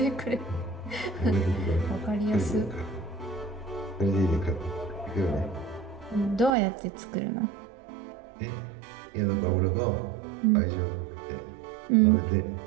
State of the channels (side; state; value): left; drops out; at 6.6 s